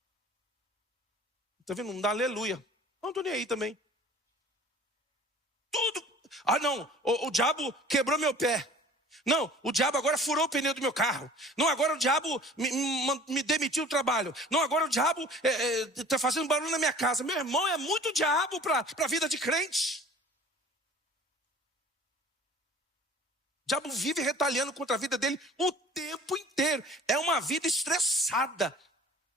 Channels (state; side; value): normal; both; correlation 0.46